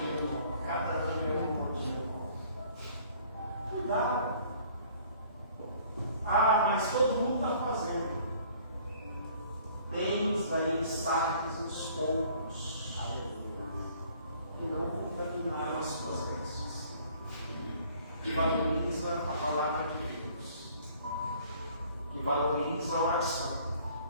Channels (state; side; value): inverted; both; correlation -0.56